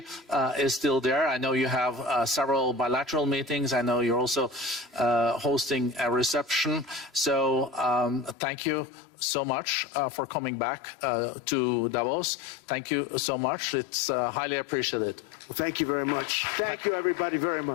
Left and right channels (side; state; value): right; drops out; at 8.3 s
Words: is still there. I know you have several bilateral meetings. I know you're also hosting a reception. So thank you so much for coming back to Davos. Thank you so much. It's highly appreciated. Well, thank you very much. Thank you, everybody, very